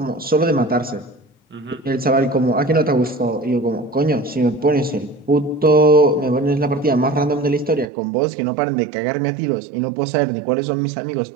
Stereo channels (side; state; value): left; drops out; at 7.9 s